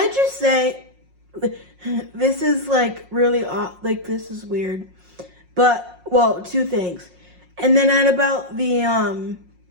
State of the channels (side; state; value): left; late; 5.6 ms